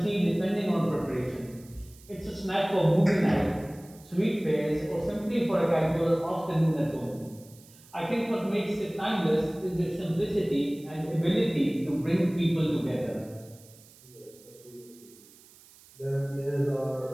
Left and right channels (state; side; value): noise; right; hiss, 24 dB below the sound